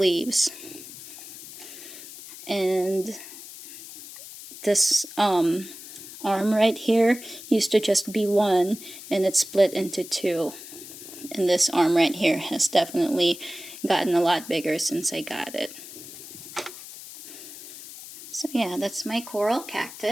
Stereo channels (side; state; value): left; noise; hiss, 14 dB below the sound